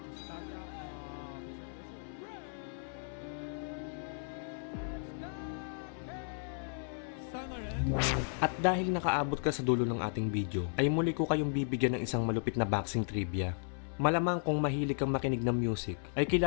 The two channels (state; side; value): silent; right; 55 dB below the other